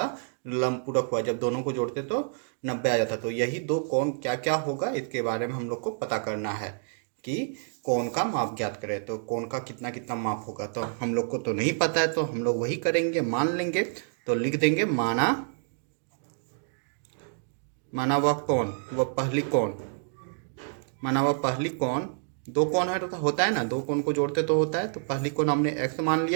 लंब पूरक हुआ, जब दोनों को जोड़ते तो 90 आ जाता। तो यही दो कोण क्या क्या होगा इसके बारे में हम लोग को पता करना है कि कोण का माप ज्ञात करें। तो कोण का कितना कितना माप होगा, तो हम लोग को तो नहीं पता है, तो हम लोग वही करेंगे, मान लेंगे। तो लिख देंगे माना वह कोण, वह पहली कोण, माना वह पहली कोण, दो कोण है तो होता है ना, दो कोण को जोड़ते तो होता है, तो पहली कोण हमने x मान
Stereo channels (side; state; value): left; silent; digital silence